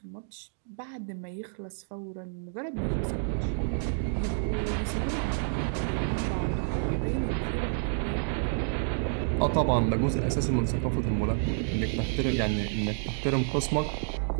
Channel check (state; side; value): silent; left; digital silence